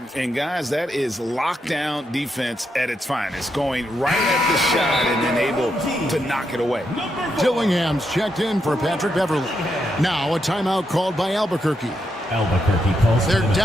And guys, that is lockdown defense at its finest, going right at the shot and then able to knock it away. Dillingham's checked in for Patrick Beverly. Now a timeout called by Albuquerque. Albuquerque calls. They're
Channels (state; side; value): normal; both; correlation 0.82